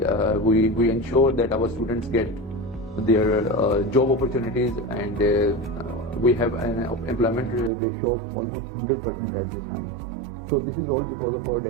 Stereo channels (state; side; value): drops out; left; at 7.7 s